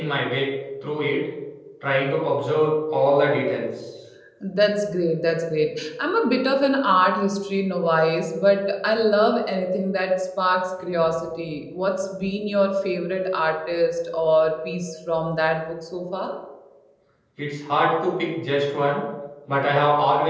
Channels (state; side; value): identical; both; correlation 1.00